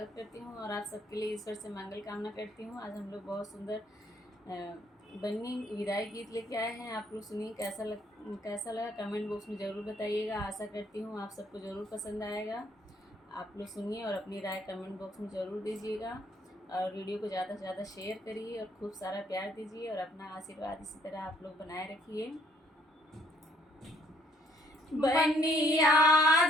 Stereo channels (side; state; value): both; normal; correlation 0.65